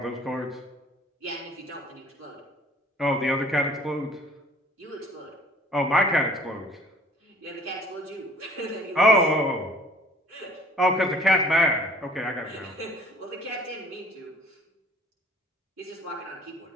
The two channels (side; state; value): both; normal; correlation 0.52